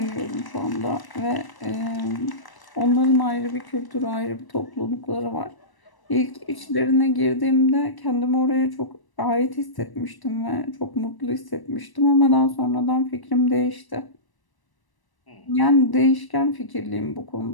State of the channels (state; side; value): late; right; 1.0 ms